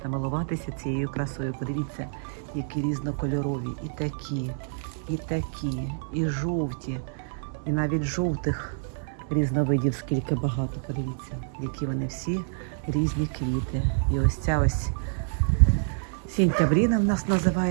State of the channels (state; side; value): silent; left; 60 dB below the other